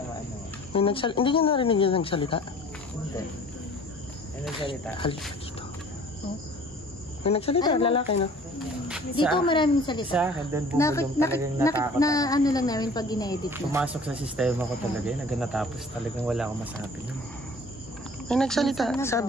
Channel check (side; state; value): both; normal; correlation 0.49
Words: maano. Hindi niya narinig yung nagsalita. Hindi. Ano nagsalita? Halika dito. Oh. May nagsalita, lalaki, no? Dito maraming salita. Sa akin, doon bumulong talagang natakot. Na ano lang namin pag ina-edit na. Pumasok sa sistema ko talaga yun. Hanggang natapos talagang wala akong masabi nun. May nagsalita,